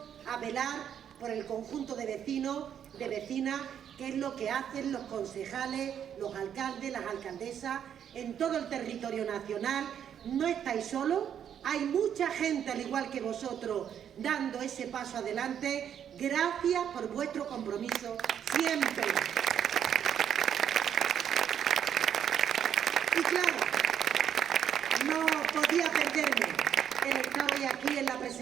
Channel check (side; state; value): left; quieter; 9.0 dB